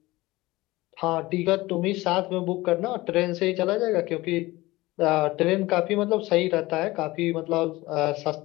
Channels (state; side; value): quieter; right; 19.7 dB